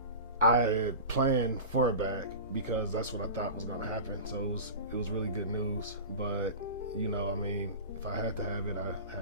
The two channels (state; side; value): inverted; both; correlation -0.32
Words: I had planned for a bag because that's what I thought was going to happen. So it was really good news. But I mean, if I had to have it, I